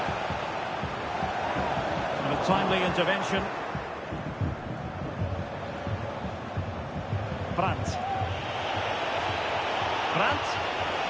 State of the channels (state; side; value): identical; both; correlation 1.00